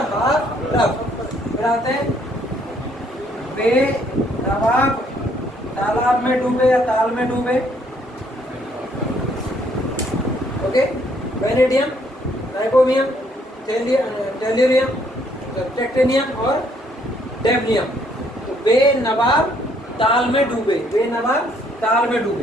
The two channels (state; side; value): normal; both; correlation 0.67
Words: हाफ रफ। फिर आते हैं बेनवाब, तालाब में डूबे या ताल में डूबे, ओके। वेनेडियम, नाइकोमियम, टेल्यूरियम, टेक्टेनियम और डेवनियम। तो बेनवाब ताल में डूबे, बेनवाब ताल में